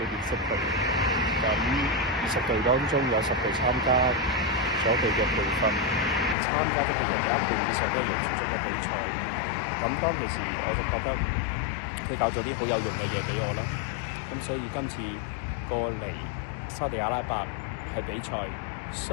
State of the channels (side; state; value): right; drops out; at 6.4 s